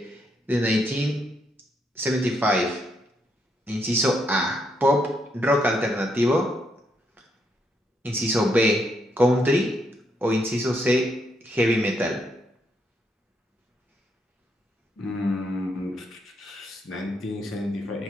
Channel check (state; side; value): normal; both; correlation 0.76